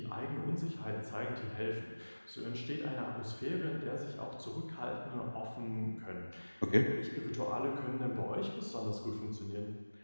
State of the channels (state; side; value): inverted; both; correlation -1.00